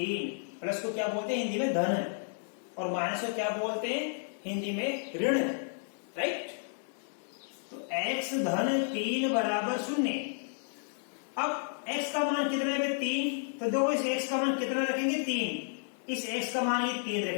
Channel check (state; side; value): silent; right; 56 dB below the other